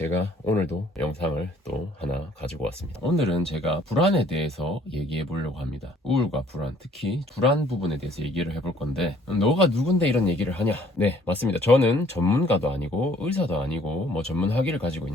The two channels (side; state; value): both; normal; correlation 0.59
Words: 오늘도 영상을 또 하나 가지고 왔습니다. 오늘은 제가 불안에 대해서 얘기해 보려고 합니다. 우울과 불안, 특히 불안 부분에 대해서 얘기를 해볼 건데, 너가 누군데 이런 얘기를 하냐? 네, 맞습니다. 저는 전문가도 아니고 의사도 아니고 뭐 전문 학위를 가지고